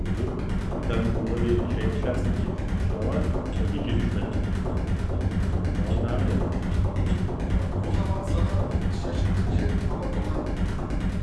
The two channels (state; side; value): identical; both; correlation 1.00